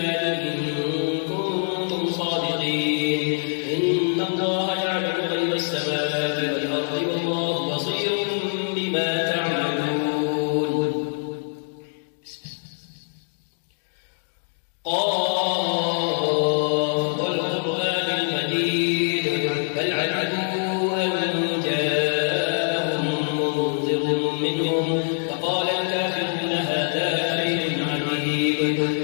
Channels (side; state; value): right; silent; 62 dB below the other